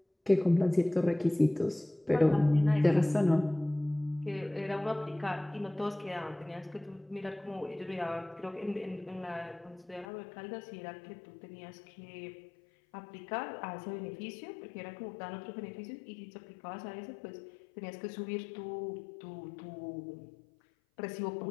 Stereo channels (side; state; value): right; drops out; at 10.1 s